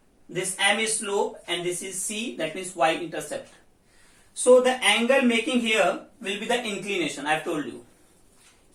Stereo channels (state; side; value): identical; both; correlation 1.00